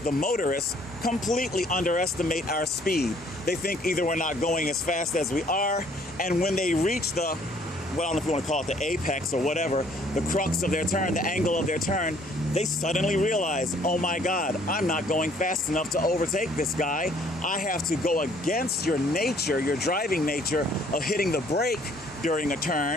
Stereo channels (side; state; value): both; normal; correlation 0.61